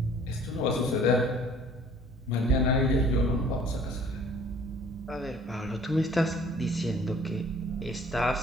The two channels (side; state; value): both; normal; correlation 0.53